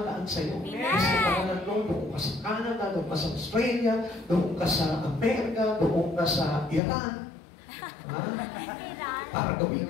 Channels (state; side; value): drops out; right; at 6.8 s